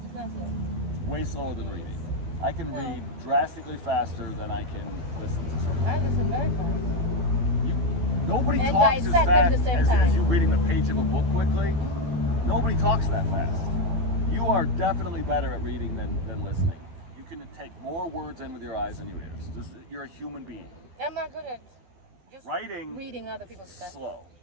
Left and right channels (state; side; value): late; left; 12 ms